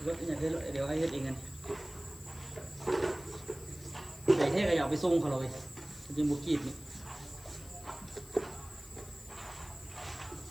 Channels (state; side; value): noise; left; hiss, 18 dB below the sound